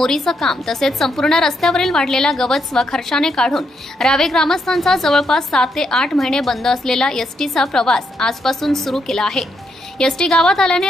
काम तसेच संपूर्ण रस्त्यावरील वाढलेला गवत स्वखर्चाने काढून रावे ग्रामस्थांचा जवळपास 7 ते 8 महिने बंद असलेला एसटीचा प्रवास आजपासून सुरू केला आहे। एसटी गावात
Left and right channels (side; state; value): both; normal; correlation 0.78